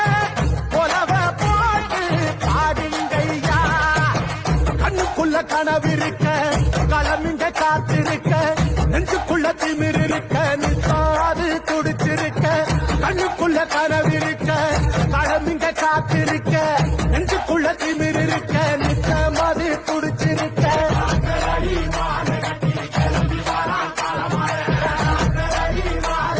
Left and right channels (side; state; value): both; identical; correlation 1.00